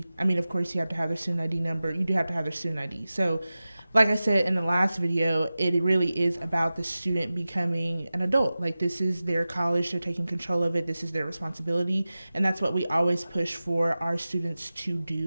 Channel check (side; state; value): both; inverted; correlation -0.95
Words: of course you have to have their student ID number. You do have to have their student ID. So like I said in the last video, it really is about the student becoming an adult. Like this is their college, they're taking control of it, this is their responsibility, and that's what we always push for our students to